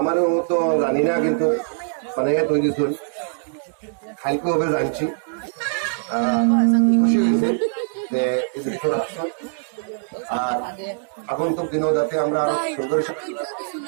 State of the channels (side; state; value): left; silent; 63 dB below the other